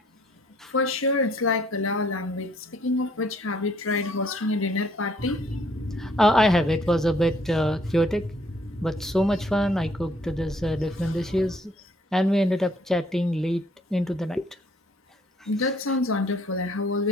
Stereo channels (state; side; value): normal; both; correlation 0.64